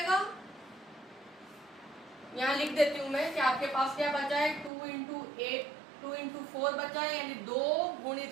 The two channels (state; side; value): drops out; left; at 4.7 s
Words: यहाँ लिख देती हूं मैं कि आपके पास क्या बचा है, 2 इंटू 4 बचा है, यानी 2